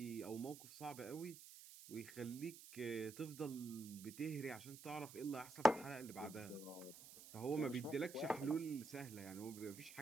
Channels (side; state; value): right; noise; hiss, 15 dB below the sound